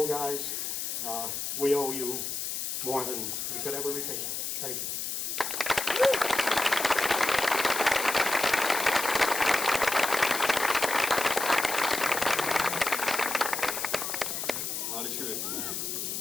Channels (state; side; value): noise; left; hiss, 3 dB below the sound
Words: guys. We owe you more than we could ever repay. Thank you.